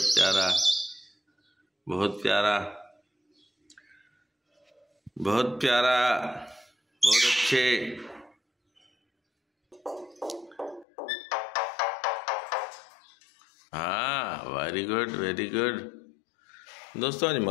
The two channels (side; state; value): right; drops out; at 10.9 s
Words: प्यारा बहुत प्यारा बहुत प्यारा, बहुत अच्छे। हाँ वेरी गुड वेरी गुड। दोस्तों आज